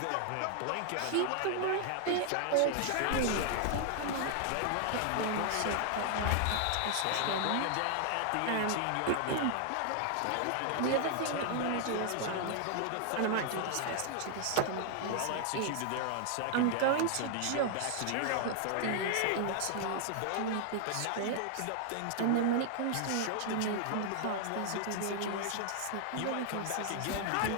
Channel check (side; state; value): both; different; correlation 0.00